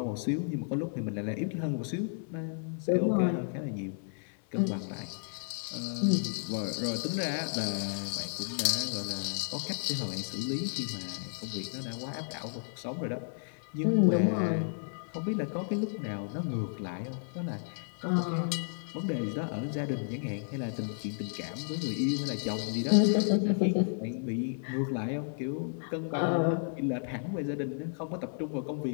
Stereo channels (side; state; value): right; silent; 56 dB below the other